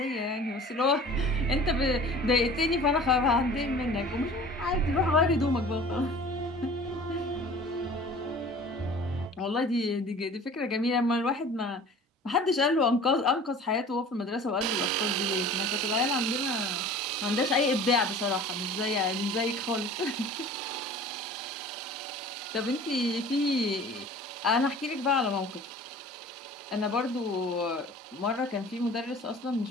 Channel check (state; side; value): normal; both; correlation 0.44